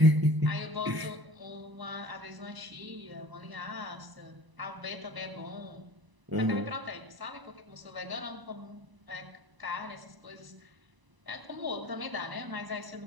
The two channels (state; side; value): late; left; 1.0 ms